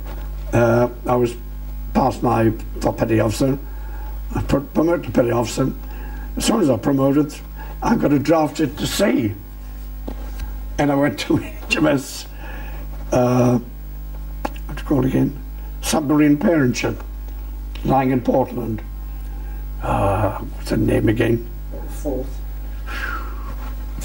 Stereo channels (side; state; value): both; identical; correlation 1.00